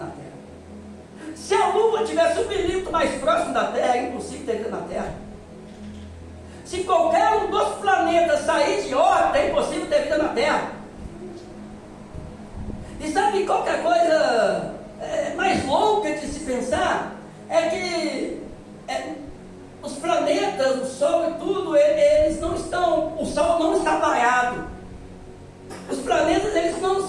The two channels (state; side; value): identical; both; correlation 1.00